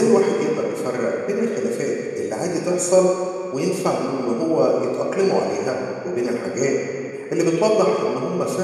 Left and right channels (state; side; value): identical; both; correlation 1.00